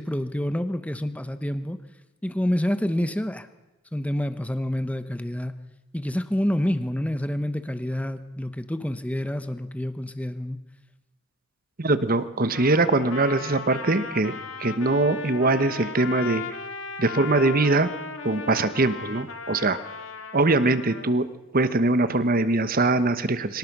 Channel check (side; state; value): both; normal; correlation 0.46